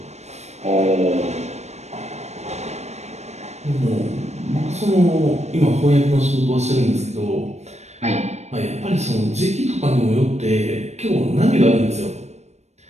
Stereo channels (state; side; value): late; left; 0.32 ms